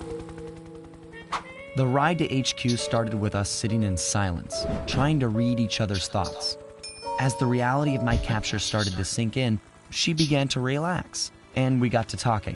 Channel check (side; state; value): both; identical; correlation 1.00